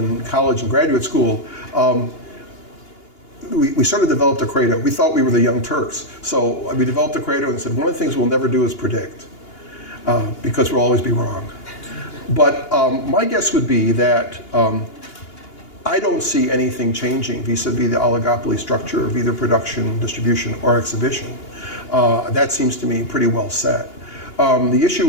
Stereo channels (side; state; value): right; late; 2.8 ms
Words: college and graduate school, we sort of developed a credo. We thought we were the Young Turks. So we developed a credo and said, one of the things we'll never do is predict, because we'll always be wrong. But my guess would be that I don't see anything changing vis-a-vis the oligopoly structure of either production, distribution, or exhibition. That seems to me pretty well set. The